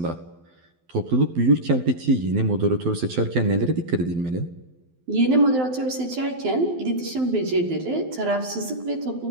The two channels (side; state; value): left; late; 12 ms